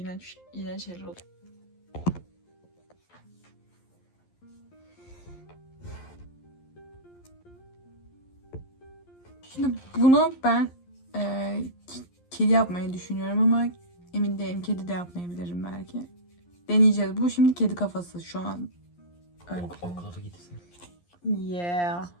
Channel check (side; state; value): right; late; 11 ms